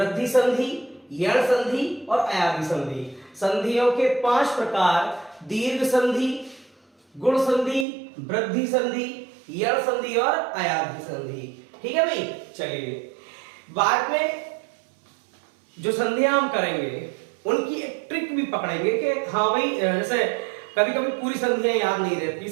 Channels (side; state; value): left; drops out; at 7.9 s